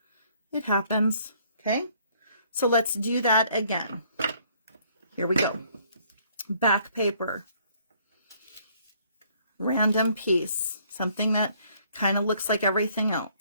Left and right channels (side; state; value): both; inverted; correlation -0.63